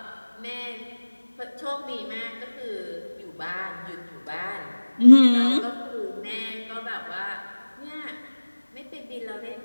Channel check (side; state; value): both; inverted; correlation -1.00